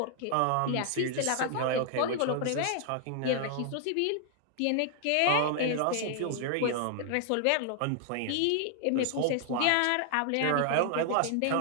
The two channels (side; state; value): both; different; correlation 0.00